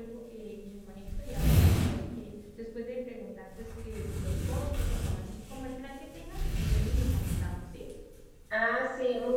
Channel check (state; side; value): identical; both; correlation 1.00